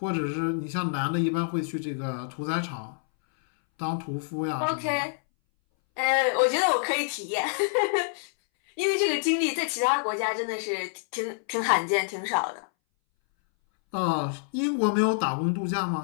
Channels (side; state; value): right; silent; 60 dB below the other